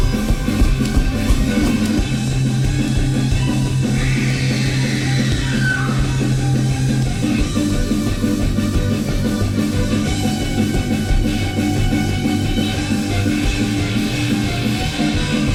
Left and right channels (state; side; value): identical; both; correlation 1.00